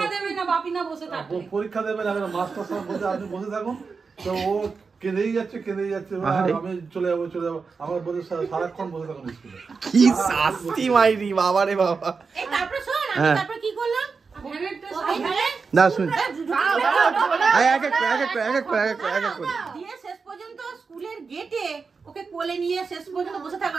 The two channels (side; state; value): left; quieter; 4.9 dB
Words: দেবে না বাপি না বসে থাকবে পরীক্ষা দেবে না মাস্টার সাহেব বলছে আপনি বসে থাকুন তো ও কেঁদেই যাচ্ছে আমি চলে যাবো আমার বলে সারাক্ষণ বসে থাকুন স্কুলে কি শাস্তি মাইরি বাবা রে বাবা এই তারপর শোন আমি তারপর কি করলাম না শুন দিয়ে শেষ পর্যন্ত স্কুলের গেটে ওকে কোলে নিয়ে শেষ পর্যন্ত বসে